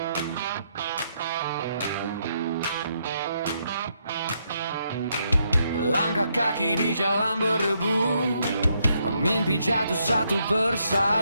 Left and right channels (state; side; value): inverted; both; correlation -0.76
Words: Langkah kaki di jalan berdebu, mimpi jatuh satu